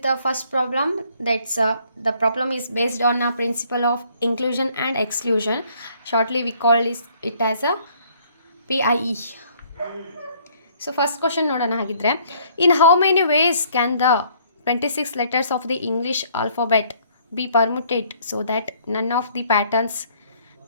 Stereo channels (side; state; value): both; inverted; correlation -0.62